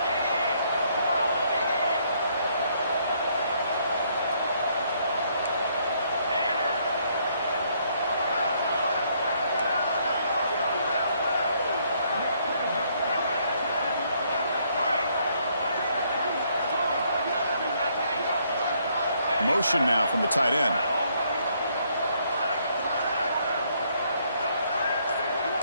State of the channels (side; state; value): both; inverted; correlation -0.69